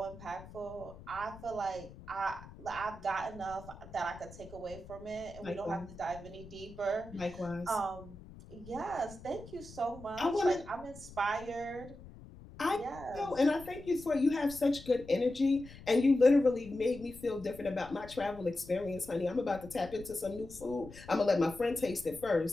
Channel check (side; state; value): left; noise; rumble, 17 dB below the sound